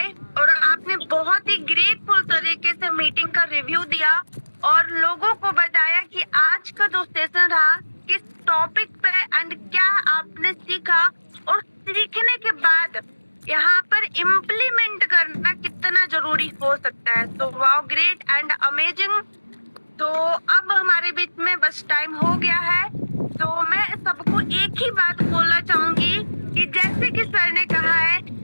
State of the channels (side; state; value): both; inverted; correlation -1.00